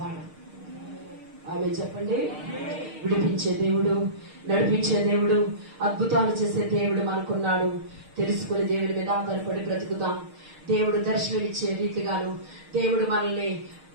ఆమె చెప్పండి. విడిపించే దేవుడు, నడిపించే దేవుడు, అద్భుతాలు చేసే దేవుడు మనకున్నాడు. తెలుసుకుని దేవుడి మీద ఆధారపడి బ్రతుకుతాం. దేవుడు దర్శనమిచ్చే రీతిగాను దేవుడు మనల్ని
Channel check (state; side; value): late; left; 6.5 ms